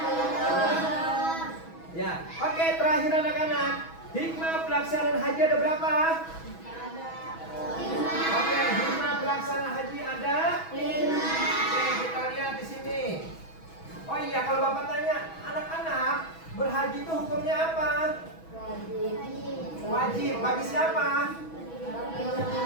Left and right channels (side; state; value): right; late; 6.2 ms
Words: Ya, oke, terakhir anak-anak. Hikmah pelaksanaan haji ada berapa? Oke, hikmah pelaksanaan haji ada 5. Oke, kita lihat di sini. Oh iya, kalau Bapak tanya, anak-anak, berhaji itu hukumnya apa? Wajib. Bagi siapa?